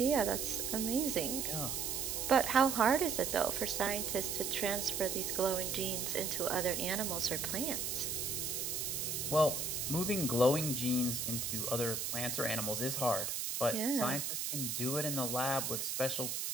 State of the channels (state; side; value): noise; right; hiss, 2 dB below the sound